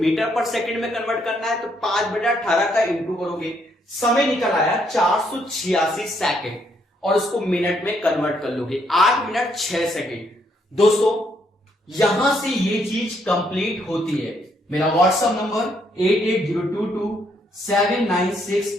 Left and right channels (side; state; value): both; normal; correlation 0.72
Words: पर सेकंड में कन्वर्ट करना है, तो 5/18 का इंटू करोगे, समय निकल आया 486 सेकंड, और उसको मिनट में कन्वर्ट कर लोगे, 8 मिनट 6 सेकंड। दोस्तों यहां से ये चीज कंप्लीट होती है। मेरा व्हाट्सएप नंबर